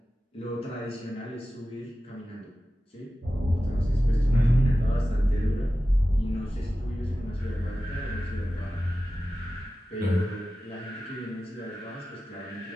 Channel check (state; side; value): normal; both; correlation 0.94